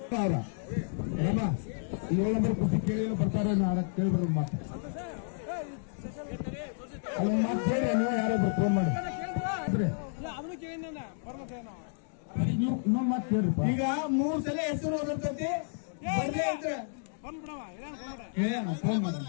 ರಾಮ 7 ನಂಬರ್ ಕುಸ್ತಿ ಕೇಳಿ ಬರ್ತಾರೆ ಕೇಳ್ಬಾರ್ದು ಮಾತು ಅಲ್ಲ ಮಾತು ಕೇಳಿ ನೀವು ಯಾರೊಬ್ರು ಫೋನ್ ಮಾಡಿ ಇನ್ನೊಂದು ಮಾತು ಕೇಳ್ರಿಪ್ಪ. ಈಗ 3 ಸಲ ಹೆಸರು ಓದಿರ್ತೈತಿ ಫೋನ್ ಮಾಡಿ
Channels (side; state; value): right; silent; digital silence